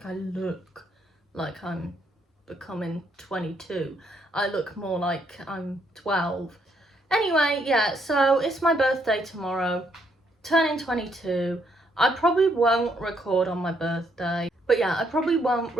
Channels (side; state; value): both; normal; correlation 0.73